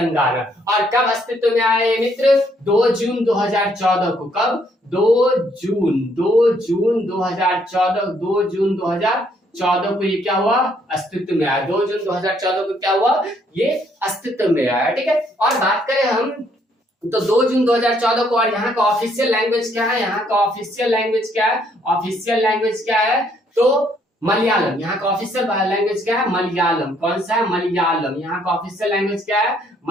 और कब अस्तित्व में आए मित्र? 2 जून 2014 को। कब? 2 जून 2014। 2 जून 2014 को ये क्या हुआ? अस्तित्व में आया। 2 जून 2014 को क्या हुआ? ये अस्तित्व में आया। ठीक है, और बात करें हम तो 2 जून 2014 को। और यहाँ का ऑफिशियल लैंग्वेज क्या है? यहाँ का ऑफिशियल लैंग्वेज क्या है? ऑफिशियल लैंग्वेज क्या है? तो मलयालम। यहाँ का ऑफिशियल लैंग्वेज क्या है? मलयालम। कौन सा है? मलयालम। यहाँ का ऑफिशियल लैंग्वेज क्या है?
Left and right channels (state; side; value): normal; both; correlation 0.68